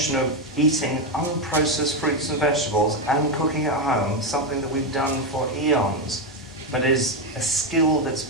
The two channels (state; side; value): normal; both; correlation 0.07